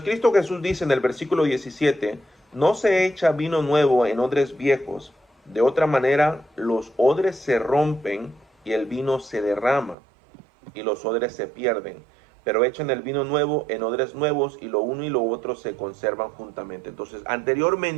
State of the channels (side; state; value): left; drops out; at 10.0 s